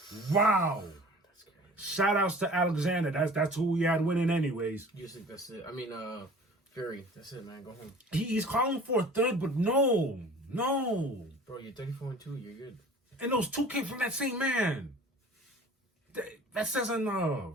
Wow. That's crazy. Shout outs to Alexander. That's who we had winning anyways. Usyk, that's it. I mean, Fury. That's it, man. Go home. He's calling for a third, but no. Bro, you're 34-2. You're good. And those two came from that same man. That says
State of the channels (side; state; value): both; normal; correlation 0.45